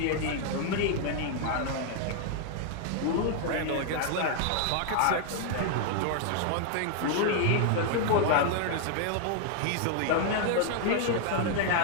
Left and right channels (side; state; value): both; different; correlation 0.00